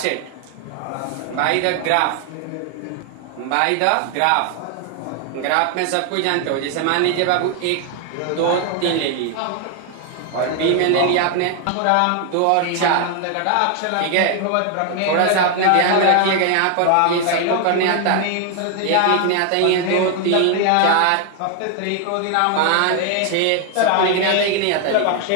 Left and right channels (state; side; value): different; both; correlation 0.00